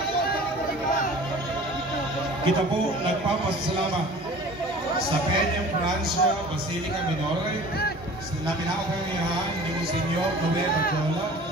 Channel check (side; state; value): both; normal; correlation 0.44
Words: Kita po nagpapasalamat sa Peña Francia Basilica Minore na pinakapangyarihan ni Monsignor Noel Barjola